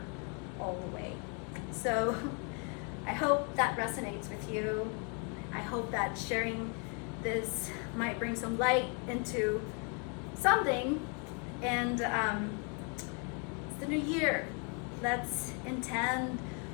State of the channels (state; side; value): quieter; right; 37.1 dB